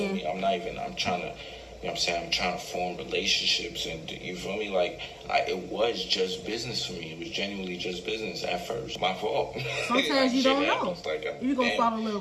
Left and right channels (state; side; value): identical; both; correlation 1.00